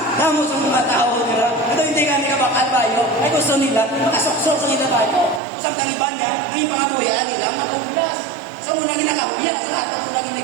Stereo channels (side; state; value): left; drops out; at 5.4 s